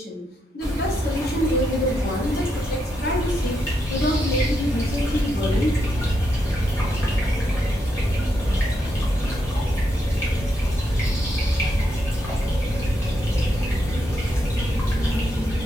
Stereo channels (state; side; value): normal; both; correlation 0.81